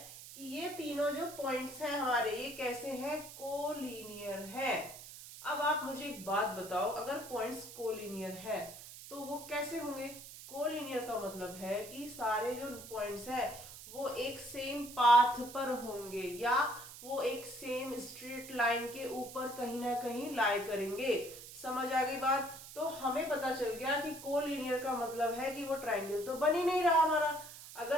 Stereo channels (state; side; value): noise; right; hiss, 14 dB below the sound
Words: कि ये तीनों जो पॉइंट्स हैं हमारे ये कैसे हैं, कोलिनियर है। अब आप मुझे एक बात बताओ, अगर पॉइंट्स कोलिनियर है तो वो कैसे होंगे। कोलिनियर का मतलब है कि सारे जो पॉइंट्स हैं वो एक सेम पाथ पर होंगे या वो एक सेम स्ट्रेट लाइन के ऊपर कहीं ना कहीं लाई करेंगे। समझ आ गई बात। तो हमें पता चल गया कि कोलिनियर का मतलब है कि वो ट्रायंगल तो बन ही नहीं रहा हमारा।